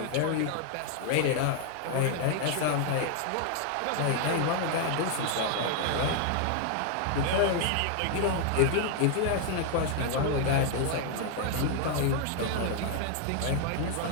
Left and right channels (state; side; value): different; both; correlation 0.00